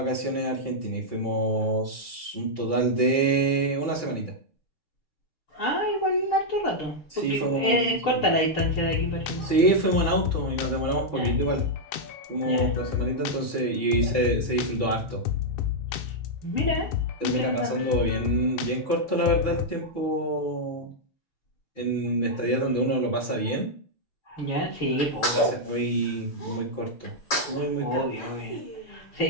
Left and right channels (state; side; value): late; right; 6.9 ms